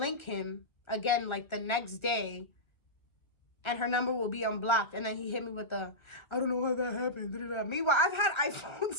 him again like the next day and her number will be unblocked, and then he hit me with the, I don't know how that happened. Meanwhile, I've had iPhones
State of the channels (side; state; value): right; late; 1.3 ms